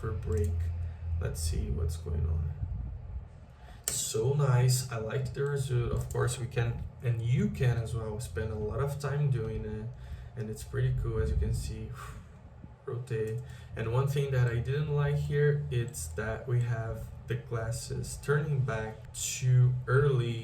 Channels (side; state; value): both; identical; correlation 1.00